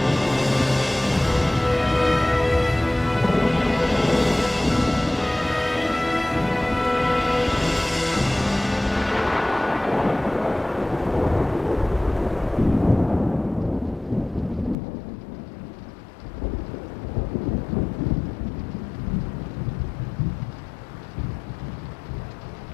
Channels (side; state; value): right; drops out; at 14.8 s